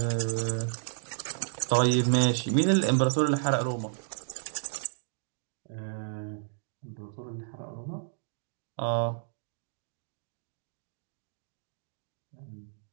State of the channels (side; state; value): left; silent; digital silence